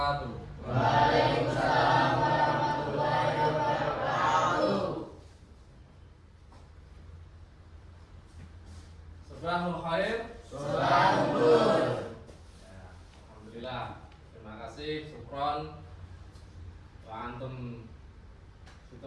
Waalaikumsalam warahmatullahi wabarakatuh. Sabahul khair. Sabahul nur. Ya, alhamdulillah. Terima kasih, syukron. Wa antum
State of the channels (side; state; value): both; identical; correlation 1.00